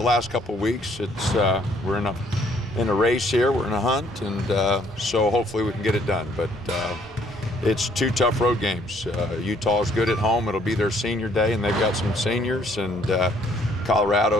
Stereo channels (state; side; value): normal; both; correlation 0.64